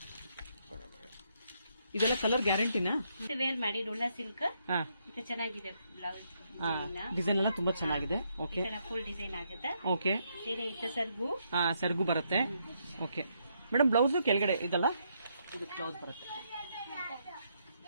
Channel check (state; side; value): inverted; both; correlation -0.76